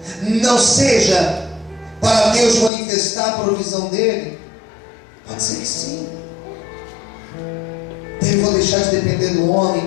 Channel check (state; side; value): drops out; right; at 2.7 s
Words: não seja para Deus manifestar a provisão dele? Pode ser que sim. Devo deixar de depender do